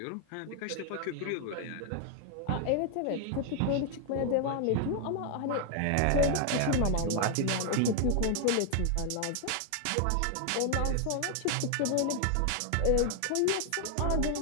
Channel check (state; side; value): different; both; correlation 0.00